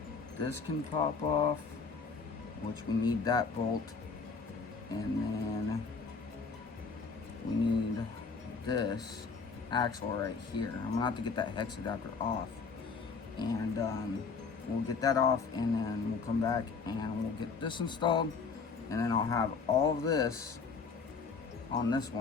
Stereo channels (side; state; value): right; quieter; 5.0 dB